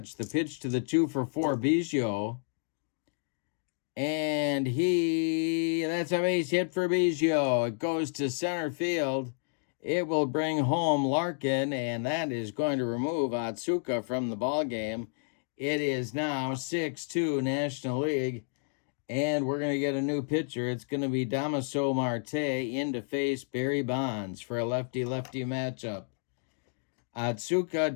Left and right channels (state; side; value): silent; right; digital silence